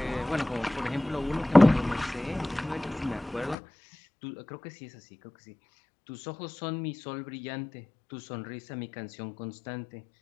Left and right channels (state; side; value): drops out; right; at 3.6 s